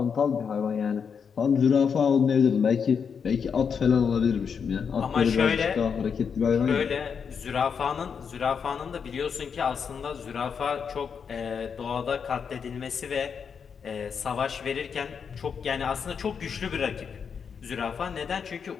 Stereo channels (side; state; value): right; quieter; 6.5 dB